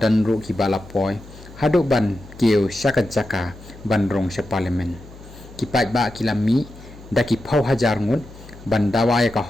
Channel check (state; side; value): noise; left; hum, 19 dB below the sound